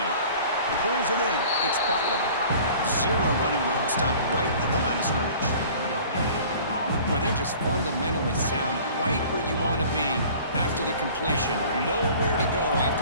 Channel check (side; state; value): both; inverted; correlation -0.47